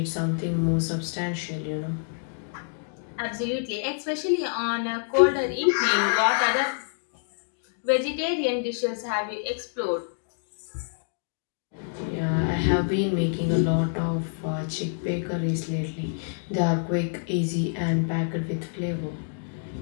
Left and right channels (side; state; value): right; silent; digital silence